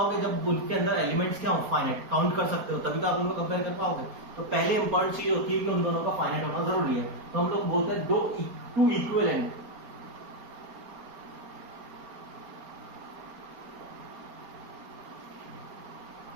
जब उनके अंदर एलिमेंट्स क्या हो, फाइनाइट, काउंट कर सकते हो, तभी तो आप उनको कंपेयर कर पाओगे। तो पहले इंपॉर्टेंट चीज होती है कि उन दोनों का फाइनाइट होना जरूरी है। तो हम लोग बोलते हैं two equivalent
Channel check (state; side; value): late; left; 4.3 ms